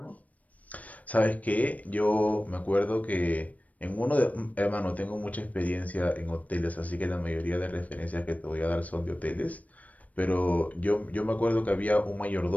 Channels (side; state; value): right; late; 0.070 ms